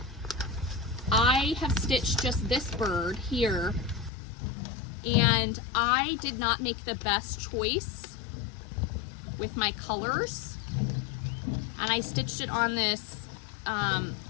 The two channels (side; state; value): right; drops out; at 4.1 s